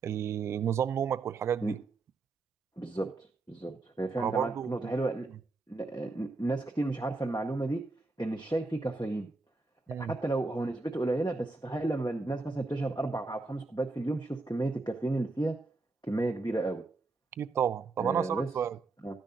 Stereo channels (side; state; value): left; quieter; 3.6 dB